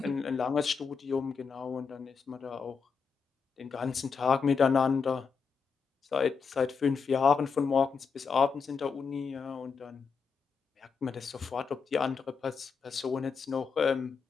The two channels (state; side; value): quieter; right; 5.6 dB